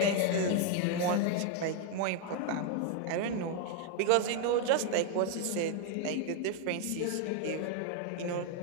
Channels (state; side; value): different; both; correlation 0.00